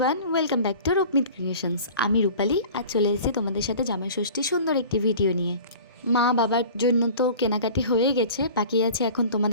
welcome back to Rupmit creations. আমি রূপালী, আজ চলে এসেছি তোমাদের সাথে জামাই ষষ্ঠীর সুন্দর একটি ভিডিও নিয়ে। মা বাবার জন্য তো কেনাকাটি হয়ে গেছে, বাকি আছে এখন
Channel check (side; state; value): both; inverted; correlation -0.42